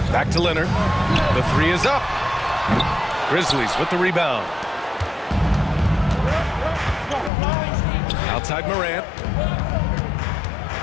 Back to Leonard. The 3 is up. Grizzlies with the rebound. Outside Morant.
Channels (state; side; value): drops out; right; at 7.3 s